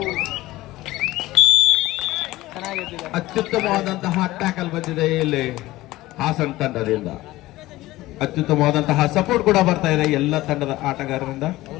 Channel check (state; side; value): quieter; right; 17.6 dB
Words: ಅತ್ಯುತ್ತಮವಾದಂತಹ ಟ್ಯಾಕಲ್ ಬಂದಿದೆ ಇಲ್ಲಿ ಹಾಸನ ತಂಡದಿಂದ. ಅತ್ಯುತ್ತಮವಾದಂತಹ ಸಪೋರ್ಟ್ ಕೂಡ ಬರ್ತಾ ಇದೆ ಎಲ್ಲ ತಂಡದ ಆಟಗಾರರಿಂದ.